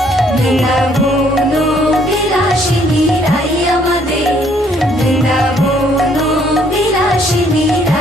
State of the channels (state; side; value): normal; both; correlation 0.65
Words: বৃন্দাবন বিলাসিনী রাই আমাদের, বৃন্দাবন বিলাসিনী